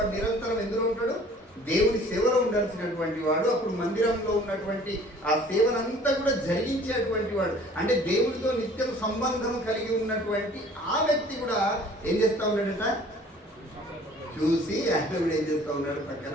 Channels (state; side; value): normal; both; correlation 0.51